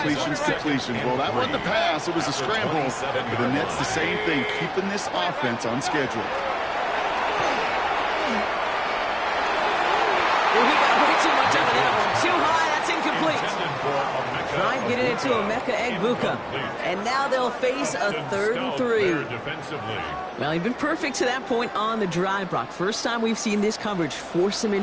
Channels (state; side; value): identical; both; correlation 1.00